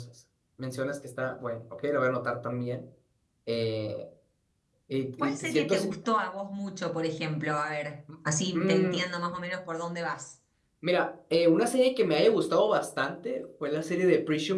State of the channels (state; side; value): identical; both; correlation 1.00